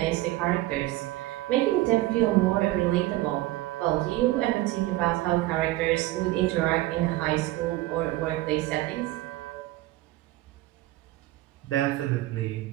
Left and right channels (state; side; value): quieter; left; 17.2 dB